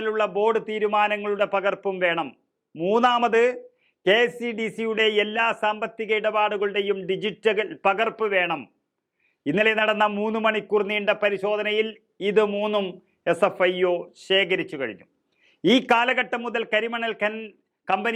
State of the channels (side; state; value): both; identical; correlation 1.00